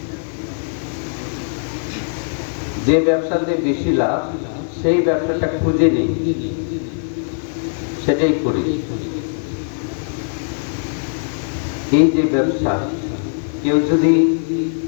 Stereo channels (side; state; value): right; silent; digital silence